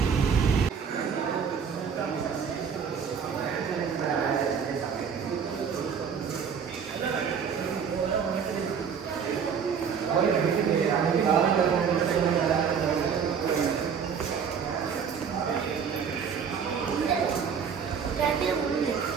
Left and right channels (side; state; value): left; quieter; 6.8 dB